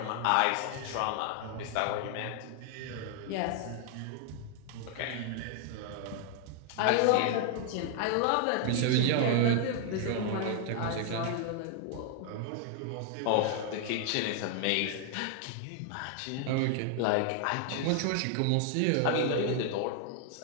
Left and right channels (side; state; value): both; different; correlation 0.00